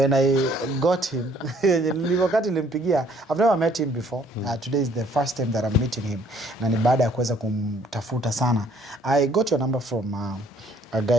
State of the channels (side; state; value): both; normal; correlation 0.61